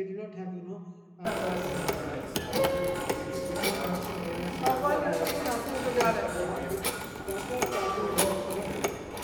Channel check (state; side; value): identical; both; correlation 1.00